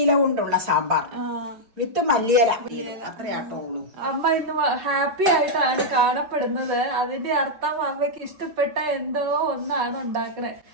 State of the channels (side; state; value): left; late; 5.3 ms